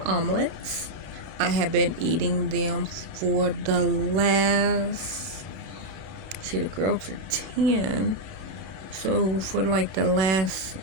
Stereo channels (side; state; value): left; late; 32 ms